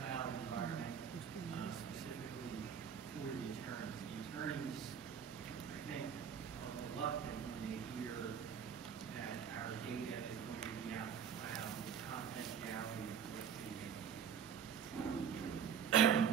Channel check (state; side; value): quieter; left; 8.0 dB